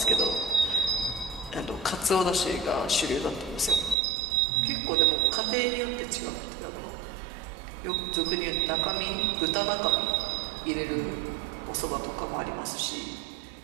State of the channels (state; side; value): drops out; left; at 4.0 s